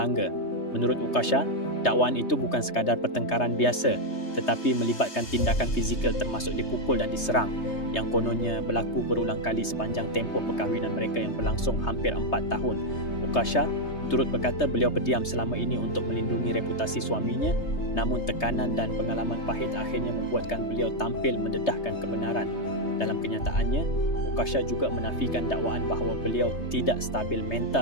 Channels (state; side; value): late; right; 3.3 ms